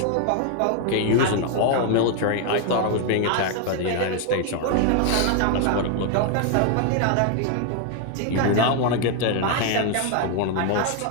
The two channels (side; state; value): both; different; correlation 0.00